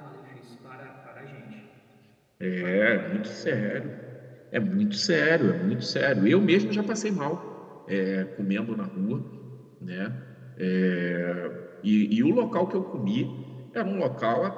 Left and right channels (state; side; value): identical; both; correlation 1.00